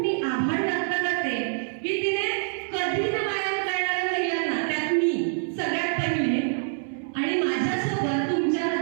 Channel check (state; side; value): silent; left; 61 dB below the other